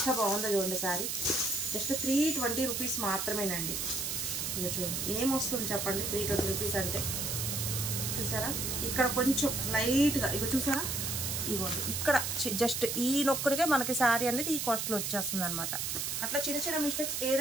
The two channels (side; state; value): right; noise; hiss, 2 dB below the sound